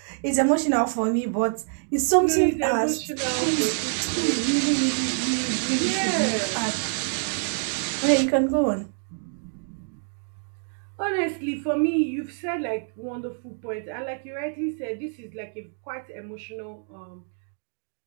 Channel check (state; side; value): silent; left; 61 dB below the other